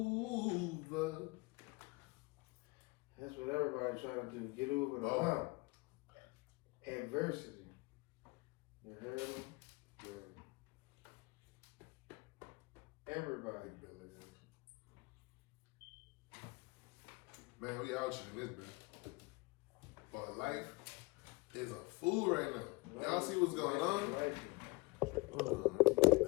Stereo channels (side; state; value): right; quieter; 24.6 dB